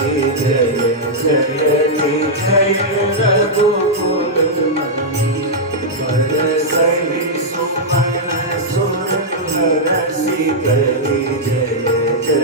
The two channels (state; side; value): normal; both; correlation -0.06